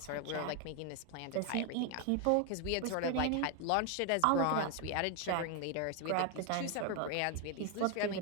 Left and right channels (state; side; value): different; both; correlation 0.01